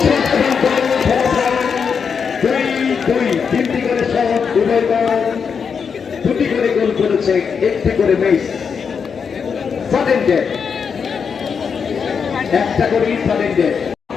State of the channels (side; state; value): right; quieter; 6.3 dB